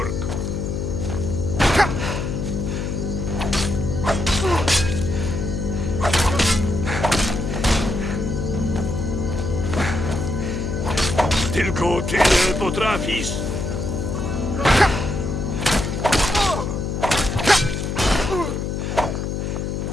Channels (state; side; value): noise; left; hum, 2 dB below the sound